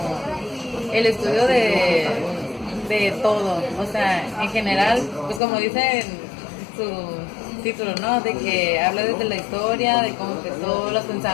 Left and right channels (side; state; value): right; drops out; at 5.4 s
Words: el estudio de todo, o sea, en general, pues como dice en su título, ¿no? De que habla desde la historia, de cómo empezó, los